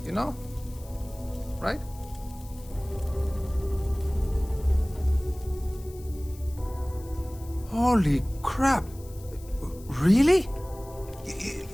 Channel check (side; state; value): left; noise; hiss, 22 dB below the sound